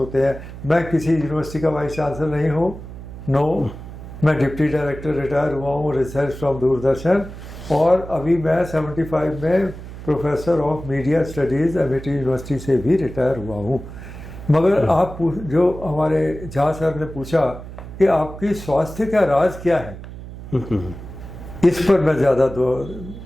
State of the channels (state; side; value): noise; right; hum, 12 dB below the sound